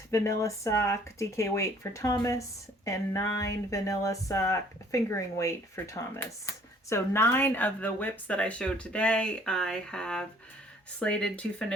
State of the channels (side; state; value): both; normal; correlation 0.57